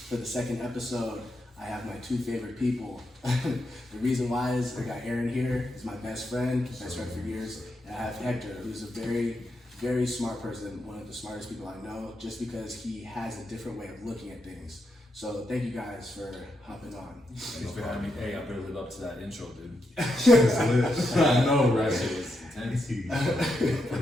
for the second episode, I have my two favorite people. The reason why is I got Aaron here. He's my best friend for years. And I have Hector, who's a very, very smart person, one of the smartest people I know, just because he has a different way of looking at things. So thank you guys for hopping on. Thanks for having me. Hey, I better live up to that intro, dude. I know, right? It was intense.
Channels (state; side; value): normal; both; correlation 0.83